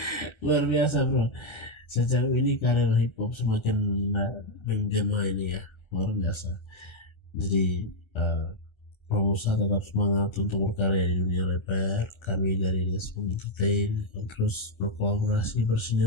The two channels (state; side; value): late; right; 1.3 ms